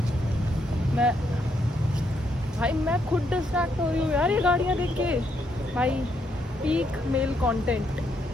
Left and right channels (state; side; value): normal; both; correlation 0.76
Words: मैं खुद डिस्ट्रैक्ट हो रही हूँ यार ये गाड़ियाँ देख के भाई। पीक मेल कंटेंट,